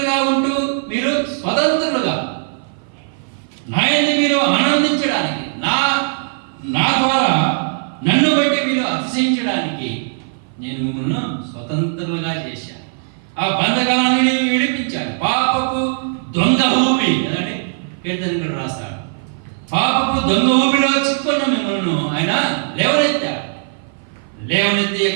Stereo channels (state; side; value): silent; left; 56 dB below the other